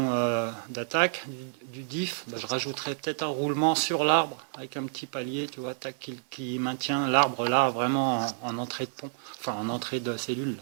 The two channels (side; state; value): left; silent; digital silence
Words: d'attaque, du diff, bah, je rajouterai peut-être un roulement sur l'arbre avec un petit palier, tu vois, tac, qui maintient l'arbre là vraiment en entrée de pont, enfin en entrée de cellule.